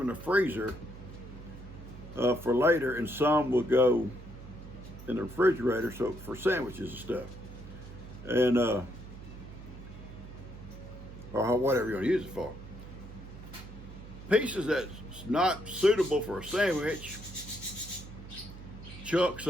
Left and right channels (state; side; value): noise; right; hum, 14 dB below the sound